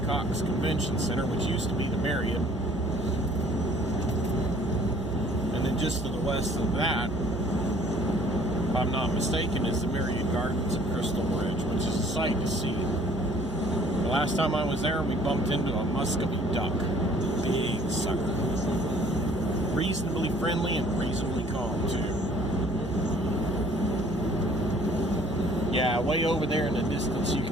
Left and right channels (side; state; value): both; normal; correlation 0.56